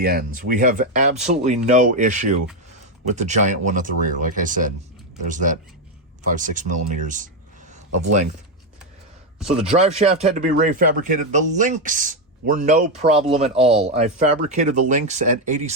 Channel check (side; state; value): both; normal; correlation 0.06